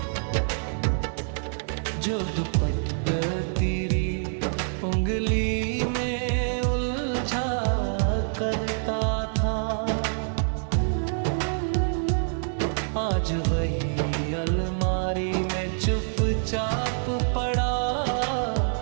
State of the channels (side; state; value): left; silent; digital silence